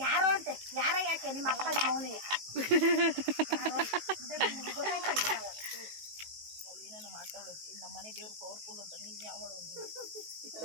ಯಾರೋ ಅಂತೆ ಯಾರೋ ಯಾಕೆ ನಿಮ್ಮ ಅಪ್ಪ ನಿಮ್ಮ ಅವನಿಗೆ ಏನೇನು ಮಾತಾಡೋದು. ನಮ್ಮ ಮನೆ ದೇವ್ರು ಪವರ್ಫುಲ್ ಅಂತ ನೀನು ಯಾವಳು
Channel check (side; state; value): left; late; 19 ms